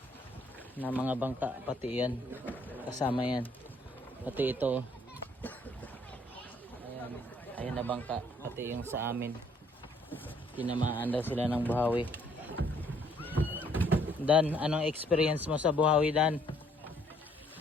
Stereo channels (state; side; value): normal; both; correlation 0.64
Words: na mga bangka, pati yan kasama yan, pati ito ayan na bangka, pati yung sa amin tinamaan daw sila ng buhawi. Dan, anong experience mo sa buhawi, Dan?